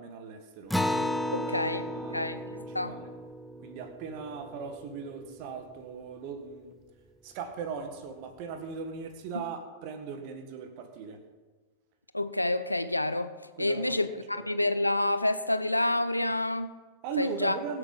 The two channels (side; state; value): both; inverted; correlation -0.56